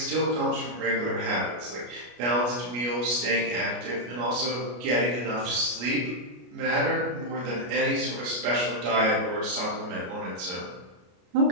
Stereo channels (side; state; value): left; late; 33 ms